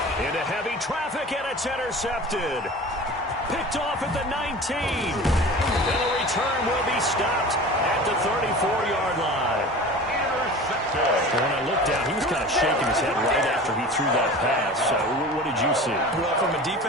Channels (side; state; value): both; normal; correlation 0.37